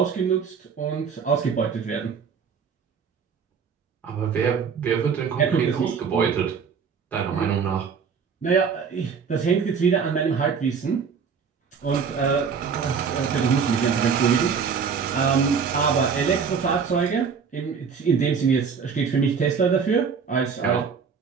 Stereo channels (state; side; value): quieter; left; 6.2 dB